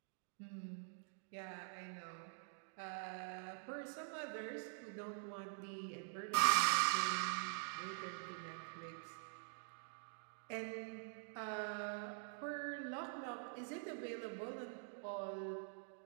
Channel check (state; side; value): silent; left; digital silence